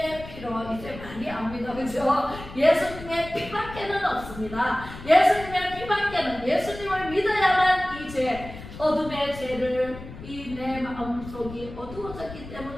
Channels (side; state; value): left; noise; rumble, 14 dB below the sound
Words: 피로. 이제 많이 압니다. 그죠? 예수님의 피밖에는 없습니다. 예수님의 피밖에는, 예수님을 믿어야만 이 죄, 어둠의 죄를 이 내 마음속이 어두워졌기